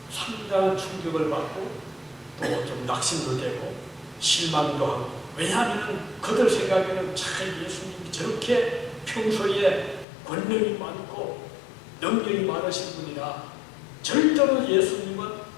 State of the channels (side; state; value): right; drops out; at 10.1 s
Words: 상당한 충격을 받고 또 좀 낙심도 되고 실망도 하고 왜냐하면 그들 생각에는 참 예수님이 저렇게 평소에 권력이 많고 능력이 많으신 분이라 절대로 예수님은